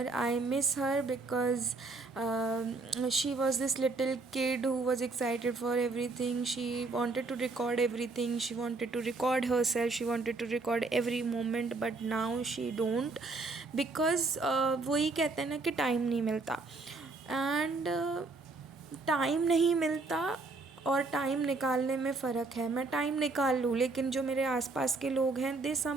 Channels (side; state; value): left; quieter; 3.6 dB